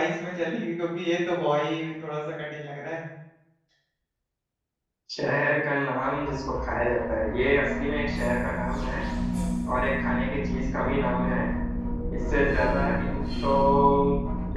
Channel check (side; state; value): both; identical; correlation 1.00